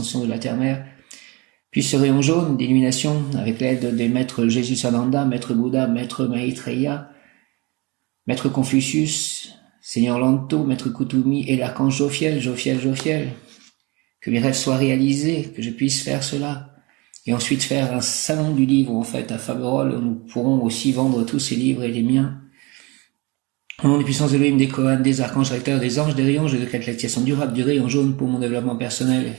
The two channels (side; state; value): left; quieter; 26.1 dB